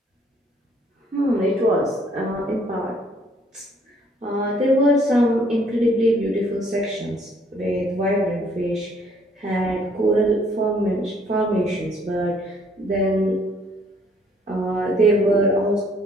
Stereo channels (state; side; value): normal; both; correlation 0.63